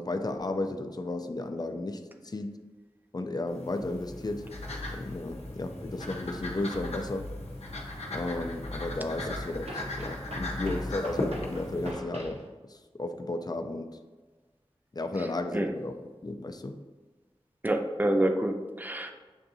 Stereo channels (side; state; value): both; normal; correlation 0.82